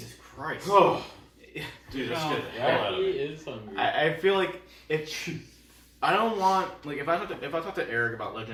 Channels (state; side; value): identical; both; correlation 1.00